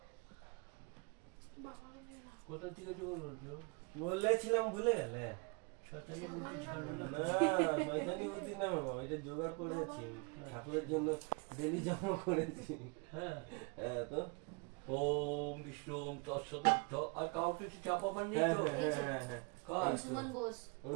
কোথা থেকে জোগাড় করছো বলেছিলাম ভুলে গেলে শয়তানি বুদ্ধি ছিল না না শয়তানি বুদ্ধি না বাবা এটা জোগাড় করেছি ঠাকুরের জন্য ডেলি জমা করেছি হ্যাঁ হ্যাঁ তো ওম বিষ্ণু ওম তৎসদর্থ আর কাউ কিছু চাপাবার নেই হ্যাঁ তো হ্যাঁ হ্যাঁ হ্যাঁ কাজ সুমন বোস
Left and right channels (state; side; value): quieter; left; 31.3 dB